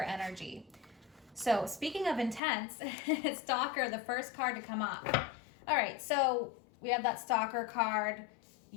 So speaking of intense, stalker, the first card to come up. All right. So we have that stalker card.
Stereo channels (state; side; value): drops out; right; at 2.4 s